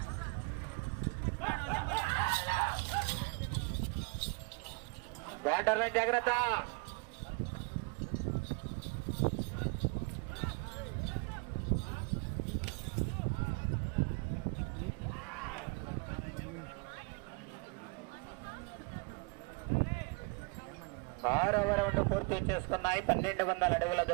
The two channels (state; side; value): quieter; left; 29.5 dB